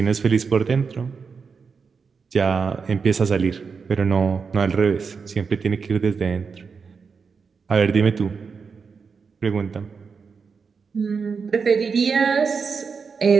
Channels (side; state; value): left; quieter; 5.4 dB